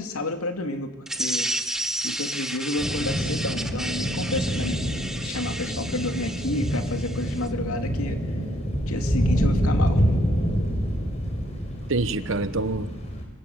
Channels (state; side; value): normal; both; correlation 0.65